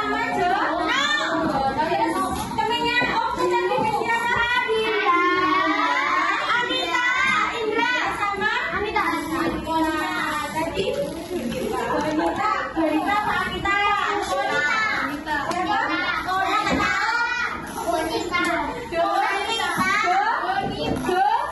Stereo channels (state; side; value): identical; both; correlation 1.00